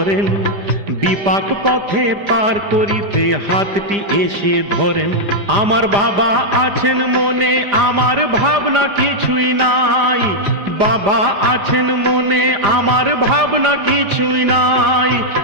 বিপাক পথে পার করিতে হাতটি এসে ধরেন। আমার বাবা আছেন মনে, আমার ভাবনা কিছুই নাই। বাবা আছেন মনে, আমার ভাবনা কিছুই নাই।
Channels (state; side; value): late; left; 5.0 ms